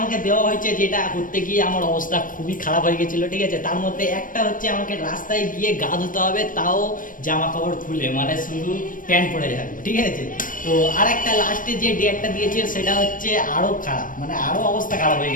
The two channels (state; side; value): late; right; 0.39 ms